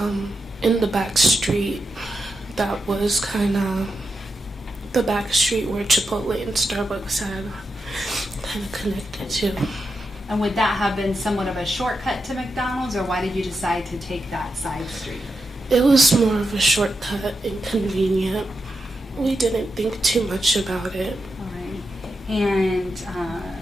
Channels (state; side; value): normal; both; correlation 0.87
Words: in the back street. That was kind of the back street where Chipotle and Starbucks had kind of connected to. And would that have been somewhat of a shortcut to McDonald's, or why did you decide to take that side street? It was more of a shortcut and convenient. We didn't think too much about it. All right. And